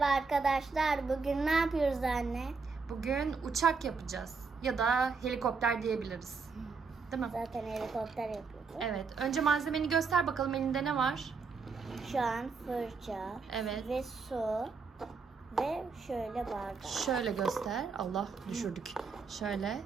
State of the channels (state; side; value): quieter; left; 4.9 dB